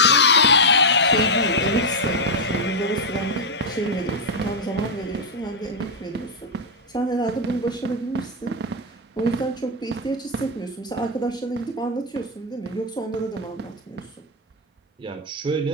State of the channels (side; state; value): both; normal; correlation 0.00